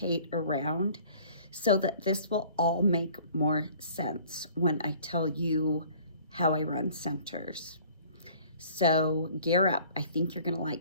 around so that this will all make more sense when I tell you how I run centers. So gear up. I think you're going to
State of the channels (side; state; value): both; inverted; correlation -0.52